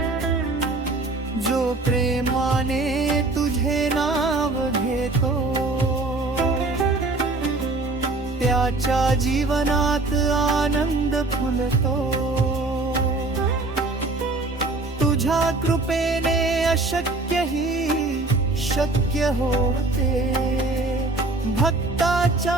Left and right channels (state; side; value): quieter; left; 3.2 dB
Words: जो प्रेमाने तुझे नाव घेतो त्याच्या जीवनात आनंद फुलतो तुझ्या कृपेने अशक्यही शक्य होते भक्ताच्या